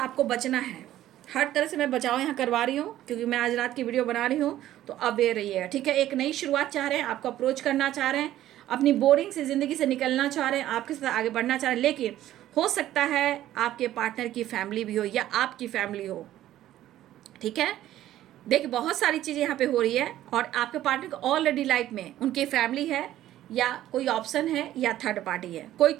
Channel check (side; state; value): left; quieter; 13.3 dB